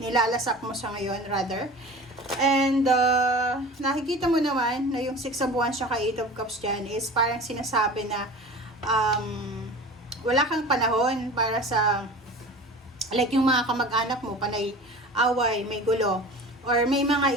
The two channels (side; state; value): both; normal; correlation 0.38